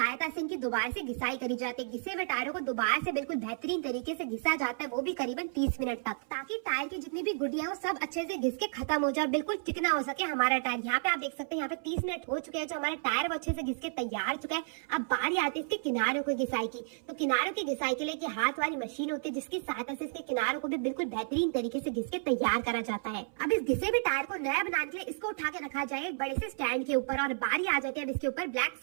से इनकी दोबारा से घिसाई करी जाती है। घिसे हुए टायरों को दोबारा से बिल्कुल बेहतरीन तरीके से घिसा जाता है, वो भी करीबन 30 मिनट तक, ताकि टायर की जितनी भी गुडिया हो सब अच्छे से घिस के खत्म हो जाए, बिल्कुल चिकना हो सके हमारा टायर। यहाँ पे आप देख सकते हैं, यहाँ पे 30 मिनट हो चुके हैं, जो हमारा टायर वो अच्छे से घिस के तैयार चुका है। अब बारी आती है इसके किनारों की घिसाई की। तो किनारों की घिसाई के लिए की हाथ वाली मशीन होती है, जिसकी सहायता से इसके किनारों को भी बिल्कुल बेहतरीन तरीके से घिस के तैयार करा जाता है। अब इस घिसे हुए टायर को नया बनाने के लिए इसको उठा के रखा जाए एक बड़े से स्टैंड के ऊपर, और बारी आ जाती है अब इसके ऊपर ब्लैक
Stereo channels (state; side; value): silent; left; 56 dB below the other